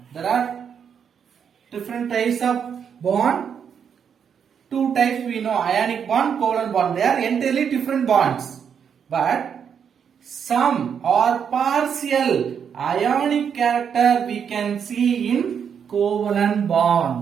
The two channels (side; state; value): left; quieter; 7.5 dB